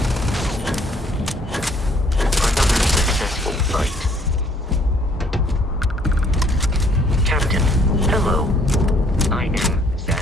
successful fight. Captain, hello. I am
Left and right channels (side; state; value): both; normal; correlation 0.63